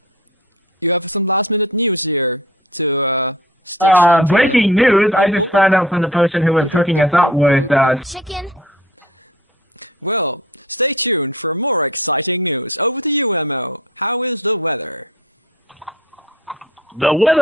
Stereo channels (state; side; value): normal; both; correlation 0.44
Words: You have some last-minute news here to stitch onto breaking news! I just found out from the person who was hooking us up with chicken. Well, stay tuned for more exciting news. Over to you, Mo. How is the weather? The